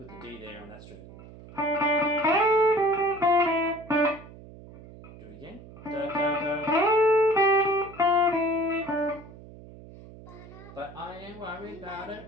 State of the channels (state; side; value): noise; right; hum, 18 dB below the sound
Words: put the D there on that string. Do it again. Da, da, da. But I ain't worried about it